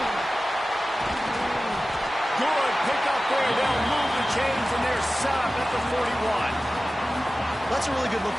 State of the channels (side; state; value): both; normal; correlation 0.96